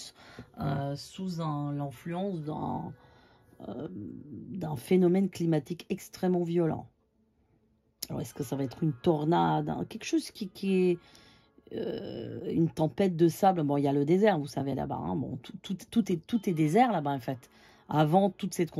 sous l'influence d'un phénomène climatique extrêmement violent. Alors, est-ce que ça va être une tornade, hein, quelque chose qui est une tempête de sable? Bon, il y a le désert, vous savez, là-bas. Hein. Bon, tout est désert là-bas, en fait. Avant toute cette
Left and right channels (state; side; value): identical; both; correlation 1.00